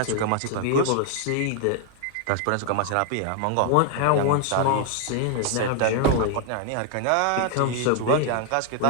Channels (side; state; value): both; different; correlation 0.00